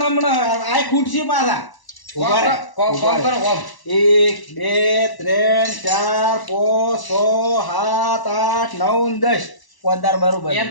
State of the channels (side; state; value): right; late; 1.0 ms